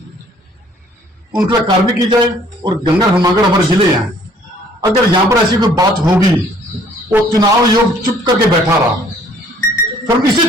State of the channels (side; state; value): both; normal; correlation 0.59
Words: उनका कार्रवाई की जाए। और गंगा हिमागर हमारे जिले हैं, अगर यहां पर ऐसी कोई बात होगी, वो चुनाव आयोग चुप करके बैठा रहा, फिर